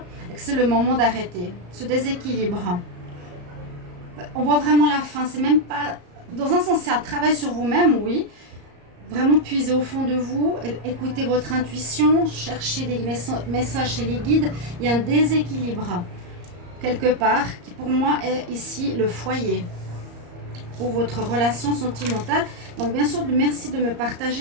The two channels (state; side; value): late; left; 34 ms